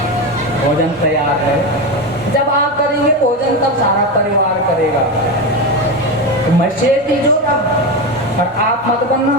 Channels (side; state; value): both; normal; correlation 0.16